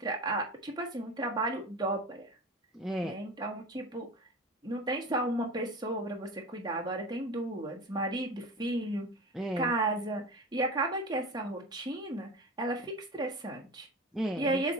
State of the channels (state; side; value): normal; both; correlation 0.30